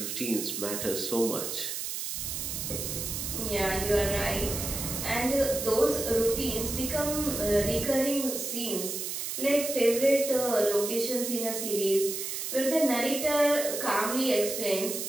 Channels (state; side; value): noise; right; hiss, 4 dB below the sound